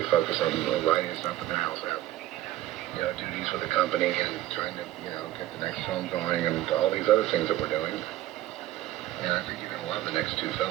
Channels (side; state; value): left; quieter; 14.5 dB